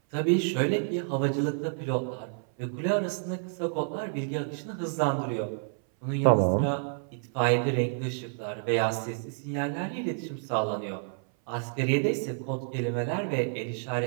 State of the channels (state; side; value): silent; left; 58 dB below the other